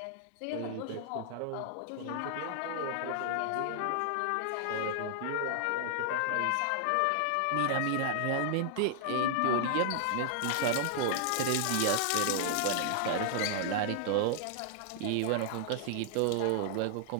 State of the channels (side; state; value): both; different; correlation -0.01